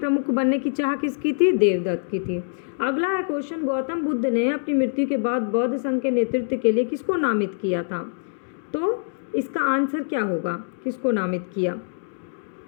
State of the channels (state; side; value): silent; right; digital silence